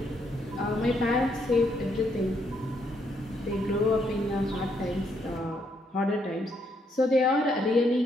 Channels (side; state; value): both; normal; correlation 0.74